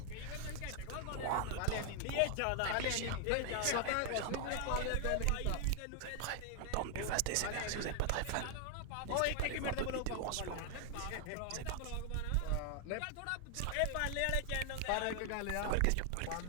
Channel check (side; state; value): both; different; correlation 0.00